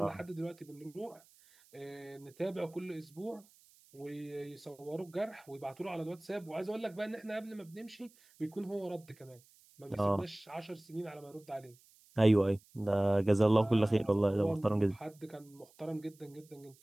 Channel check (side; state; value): right; noise; hiss, 28 dB below the sound